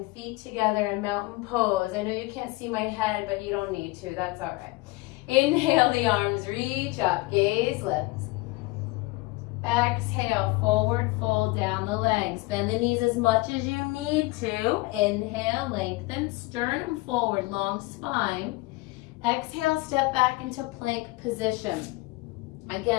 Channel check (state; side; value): quieter; right; 22.0 dB